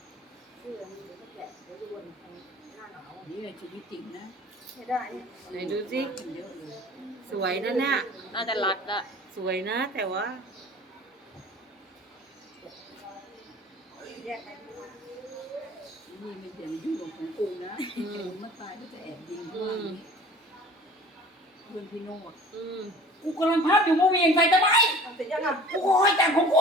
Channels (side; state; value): both; normal; correlation 0.46